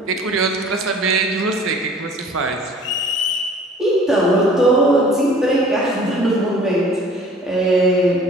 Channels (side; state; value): both; normal; correlation 0.49